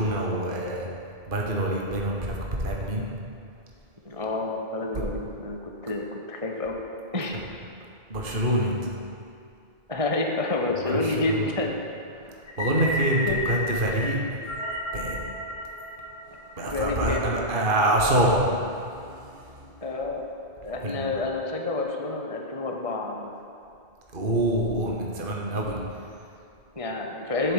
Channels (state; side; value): late; left; 2.4 ms